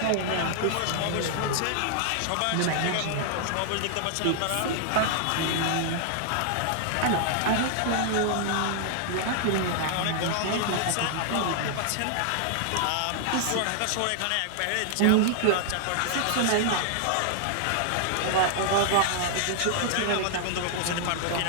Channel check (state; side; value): different; both; correlation -0.01